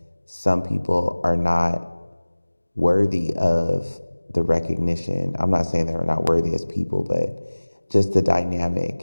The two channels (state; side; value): inverted; both; correlation -1.00